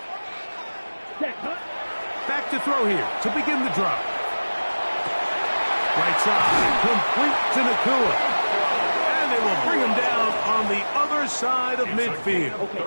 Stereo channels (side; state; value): both; inverted; correlation -1.00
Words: huh? Back to throw here to begin the drop. Right side, complete to Nakua. And they will bring him down on the other side of midfield. Okay,